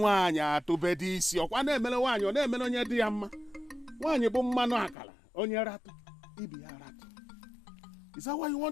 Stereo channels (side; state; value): right; drops out; at 5.0 s